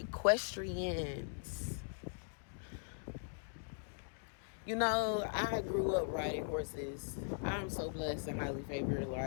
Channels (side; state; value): right; silent; digital silence